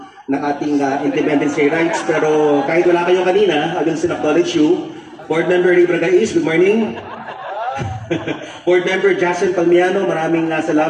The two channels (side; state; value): both; identical; correlation 1.00